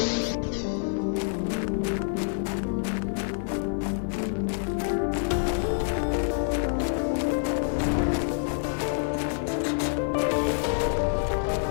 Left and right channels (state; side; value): silent; right; digital silence